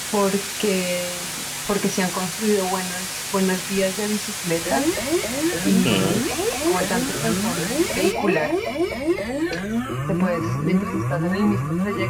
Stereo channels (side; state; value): both; identical; correlation 1.00